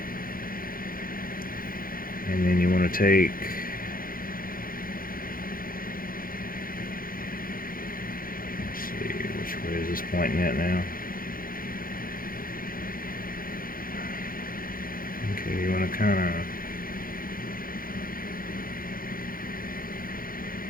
And then you want to take, let's see, which way is this pointing at now? Okay, you want to kind of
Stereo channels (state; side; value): late; right; 0.41 ms